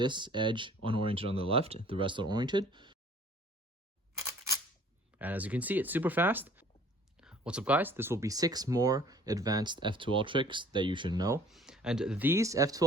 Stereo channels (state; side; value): normal; both; correlation 0.53